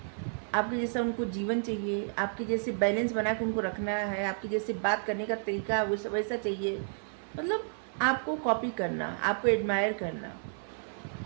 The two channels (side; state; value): left; silent; 55 dB below the other